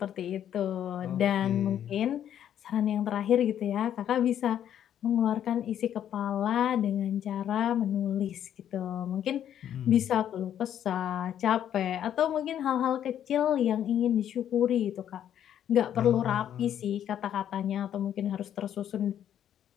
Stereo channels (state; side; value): quieter; right; 10.2 dB